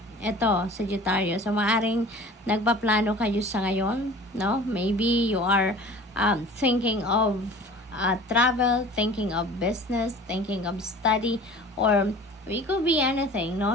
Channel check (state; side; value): normal; both; correlation 0.43